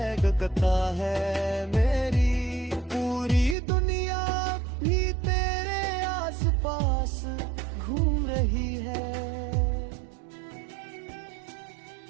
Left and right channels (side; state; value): left; drops out; at 3.6 s